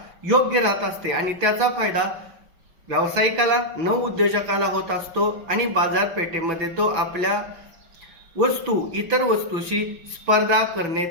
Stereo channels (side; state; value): left; late; 6.0 ms